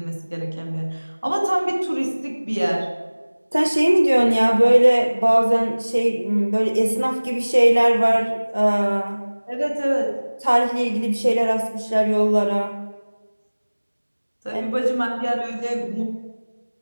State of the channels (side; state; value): both; inverted; correlation -1.00